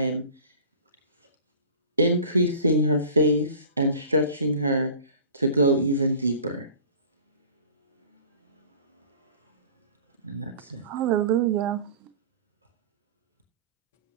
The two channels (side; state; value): both; inverted; correlation -0.42